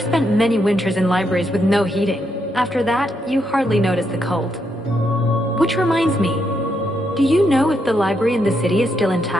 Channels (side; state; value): both; normal; correlation 0.79